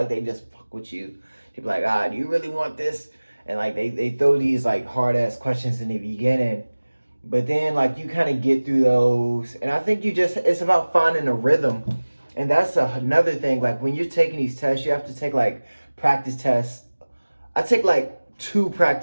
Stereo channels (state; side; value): inverted; both; correlation -1.00